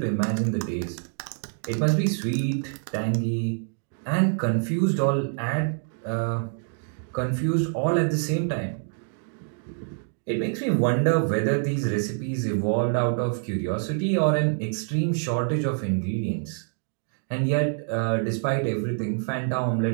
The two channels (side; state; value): left; silent; 61 dB below the other